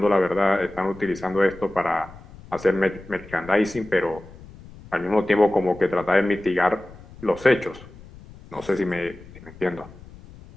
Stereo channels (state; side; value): noise; left; rumble, 19 dB below the sound